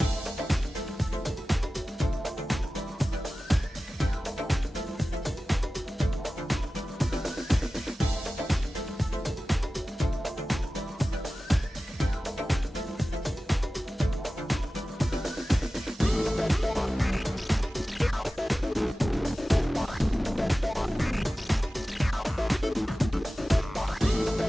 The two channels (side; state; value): both; normal; correlation 0.95